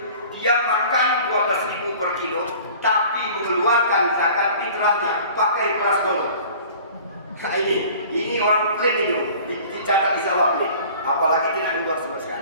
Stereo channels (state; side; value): inverted; both; correlation -0.46